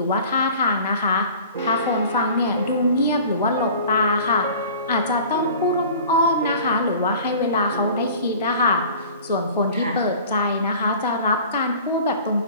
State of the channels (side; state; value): both; inverted; correlation -0.44